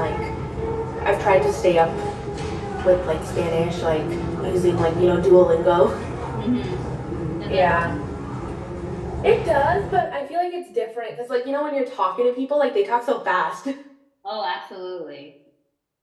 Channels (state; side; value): identical; both; correlation 1.00